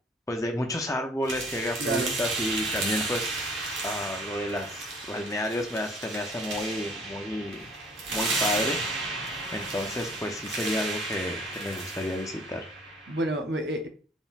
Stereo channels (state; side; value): normal; both; correlation 0.54